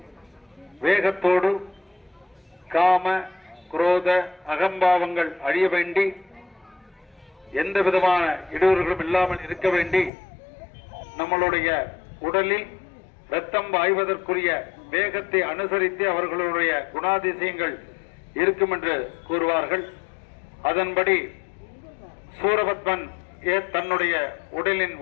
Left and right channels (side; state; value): right; drops out; at 10.1 s